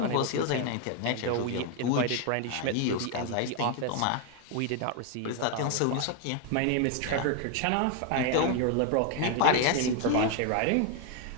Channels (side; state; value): both; different; correlation 0.01